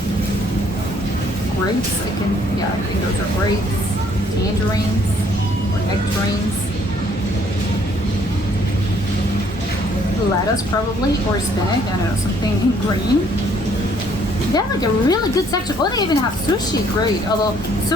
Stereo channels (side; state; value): both; normal; correlation 0.64